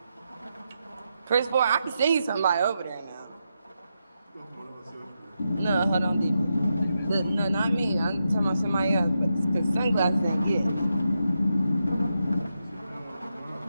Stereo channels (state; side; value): inverted; both; correlation -0.85